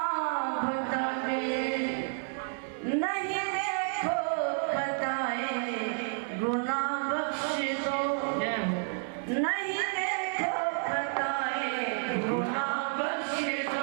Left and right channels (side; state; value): left; silent; digital silence